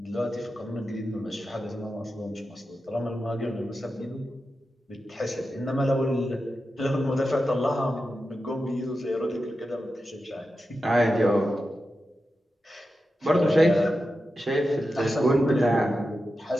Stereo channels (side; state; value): both; normal; correlation 0.91